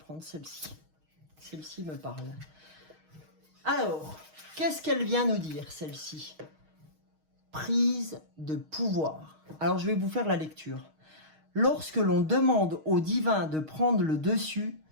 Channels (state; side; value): late; left; 6.4 ms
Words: celle-ci. Celle-ci me parle. Alors, qu'est-ce qu'elle vient nous dire, celle-ci? Prise de pouvoir. Alors, je vais vous faire la lecture. Lorsque l'on demande au divin de prendre le dessus,